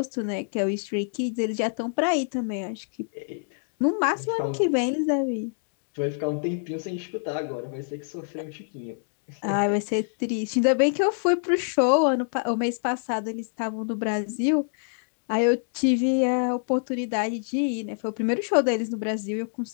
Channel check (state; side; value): silent; right; digital silence